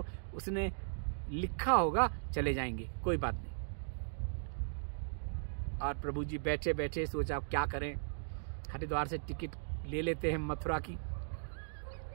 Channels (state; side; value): silent; left; digital silence